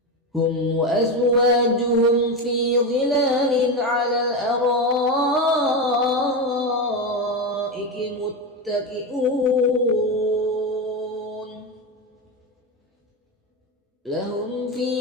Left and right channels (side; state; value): both; normal; correlation 0.15